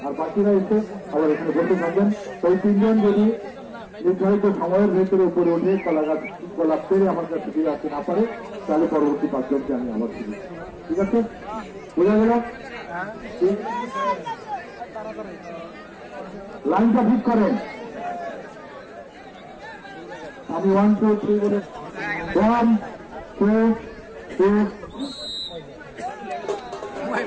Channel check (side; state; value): both; identical; correlation 1.00